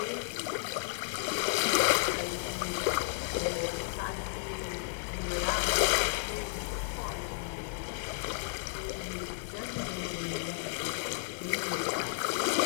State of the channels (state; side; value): silent; right; digital silence